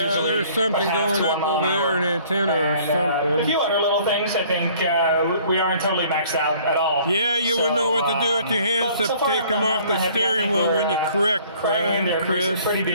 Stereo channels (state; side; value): inverted; both; correlation -0.55